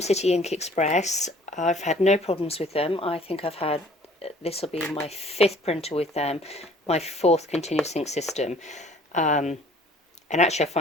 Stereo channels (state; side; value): normal; both; correlation 0.54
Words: City Ink Express. I've had no problems with them. I think I've had, this will be my 5th printer with them, my 4th continuous ink system. And actually I